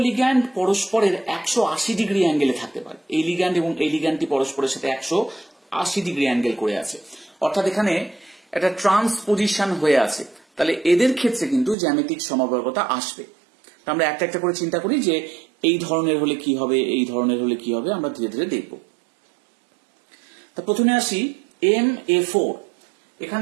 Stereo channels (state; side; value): drops out; left; at 11.8 s